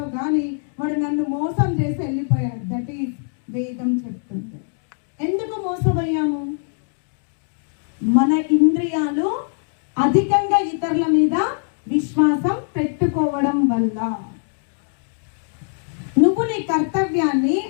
కానీ వాడు నన్ను మోసం చేసి వెళ్ళిపోయాడు. దట్ ఈస్ వేదం చెప్తుంది. ఎందుకు మోసపోయాము? మన ఇంద్రియాలు అధికంగా ఇతరుల మీద విశ్వాసం పెట్టుకోవడం వల్ల. నువ్వు నీ కర్తవ్యాన్ని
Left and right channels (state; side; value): silent; right; digital silence